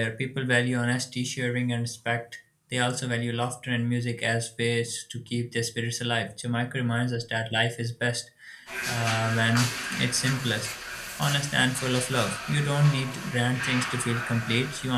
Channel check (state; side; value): identical; both; correlation 1.00